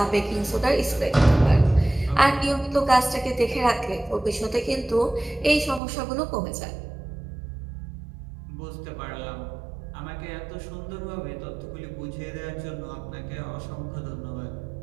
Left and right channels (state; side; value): drops out; left; at 5.8 s